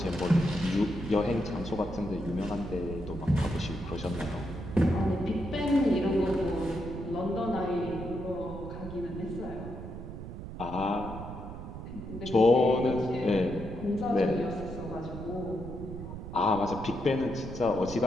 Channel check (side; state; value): right; noise; rumble, 9 dB below the sound